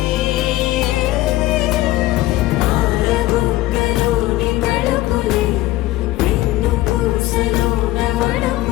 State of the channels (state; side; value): quieter; right; 16.8 dB